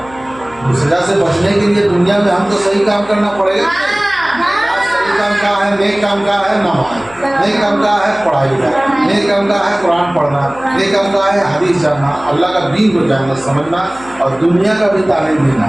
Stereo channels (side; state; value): left; noise; hum, 22 dB below the sound